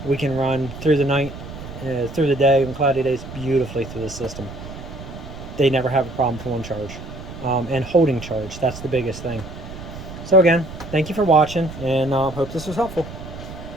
We can run through the night, through the day, and cloudy days beautifully through the system. They never have a problem pulling charge. And holding charge, that's the biggest thing. So again, thank you for watching, and hope this was helpful.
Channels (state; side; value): noise; right; rumble, 12 dB below the sound